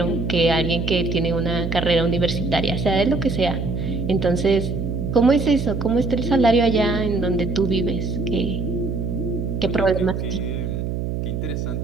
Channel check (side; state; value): right; noise; hum, 3 dB below the sound